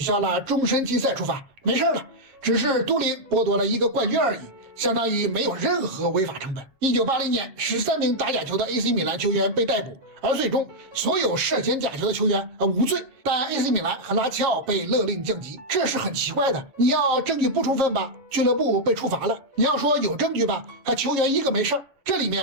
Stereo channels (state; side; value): late; left; 7.4 ms